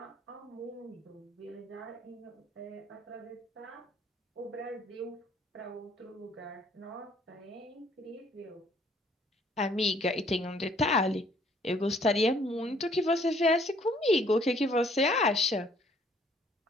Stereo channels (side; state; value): both; normal; correlation 0.62